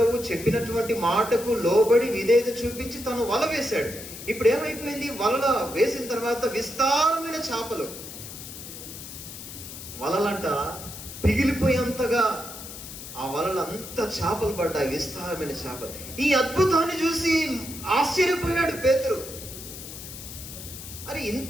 చెప్పినటువంటి మాటకు లోబడి విధేయత చూపించి తను వల వేశాడు. ఇప్పుడు ఏమైపోయింది? వలలో వేసిన తర్వాత విస్తారమైన చేపలు, వలలంట పిగిలిపోయేంతగా ఆ వలలు అంత చేపలు పడ్డాయి, విస్తారమైన చేపలు. ఈ అద్భుతాన్ని చూసి ఆశ్చర్యపోయాడు పేతురు. అరే,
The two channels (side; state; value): left; noise; hiss, 12 dB below the sound